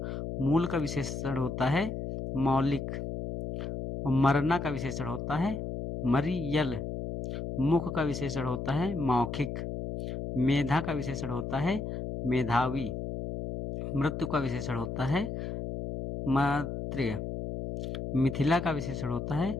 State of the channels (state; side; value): noise; left; hum, 5 dB below the sound